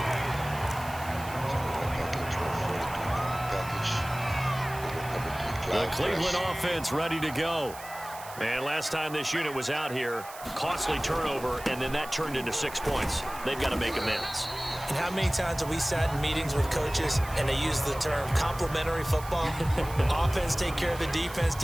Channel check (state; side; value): noise; right; hiss, 16 dB below the sound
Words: The Cleveland offense ready to go. And last time this unit was out here, costly turnover, and then that turned into 6 points. They've got to make amends. And how many times have we sat in meetings with coaches and they use the term complementary football? Offense take care of the defense,